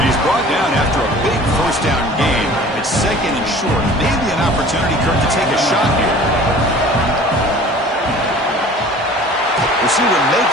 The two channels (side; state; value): both; normal; correlation 0.45